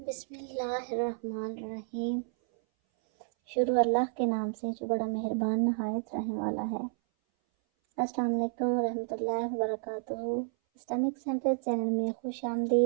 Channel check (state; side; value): silent; left; 57 dB below the other